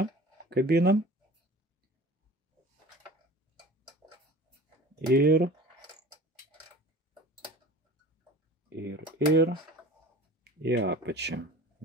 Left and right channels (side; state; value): both; normal; correlation 0.40